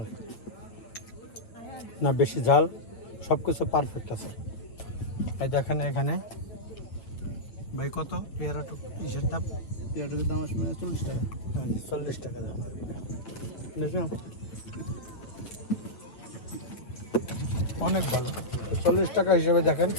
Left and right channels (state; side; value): late; right; 8.8 ms